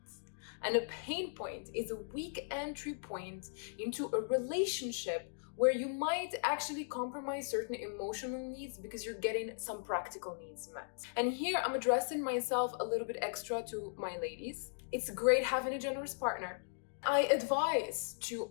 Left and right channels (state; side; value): silent; right; digital silence